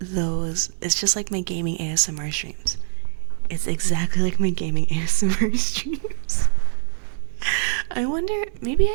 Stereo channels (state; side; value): silent; left; digital silence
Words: those. It's just like my gaming ASMR streams. It's exactly like my gaming ASMR streams. I wonder, maybe